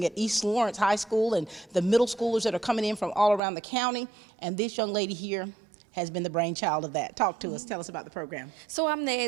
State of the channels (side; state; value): left; drops out; at 3.4 s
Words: at East Lawrence High School and the middle schoolers that are coming in from all around the county. And this young lady here has been the brainchild of that. Talk to us. Tell us about the program. So I'm the